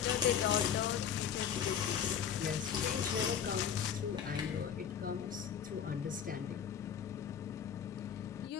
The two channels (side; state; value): right; quieter; 8.1 dB